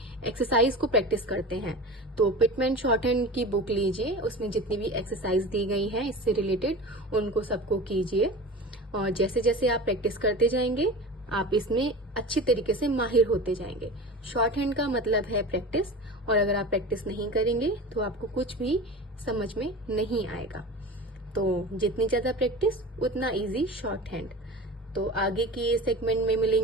एक्सरसाइज को प्रैक्टिस करते हैं। तो पिटमैन शॉर्टहैंड की बुक लीजिए, उसमें जितनी भी एक्सरसाइज दी गई हैं इससे रिलेटेड उनको सबको कीजिए, और जैसे जैसे आप प्रैक्टिस करते जाएंगे आप इसमें अच्छी तरीके से माहिर होते जाएंगे। शॉर्टहैंड का मतलब है प्रैक्टिस, और अगर आप प्रैक्टिस नहीं करेंगे तो आपको कुछ भी समझ में नहीं आएगा। तो जितनी ज्यादा प्रैक्टिस उतना इजी शॉर्टहैंड। तो आगे के सेगमेंट में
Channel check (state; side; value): normal; both; correlation 0.33